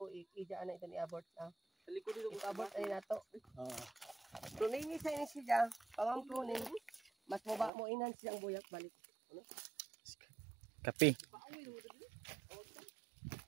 ija na ito ni abort na sa likod dito abort ay nato tuningi sa ini siya pamang tuning mas maba mo inan siyang buyat balik Kapi.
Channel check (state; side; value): drops out; left; at 7.7 s